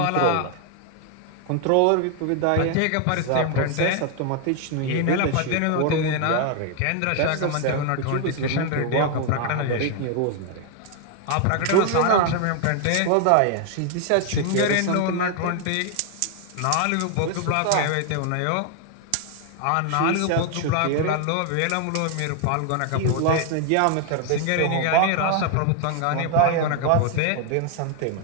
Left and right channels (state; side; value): different; both; correlation 0.00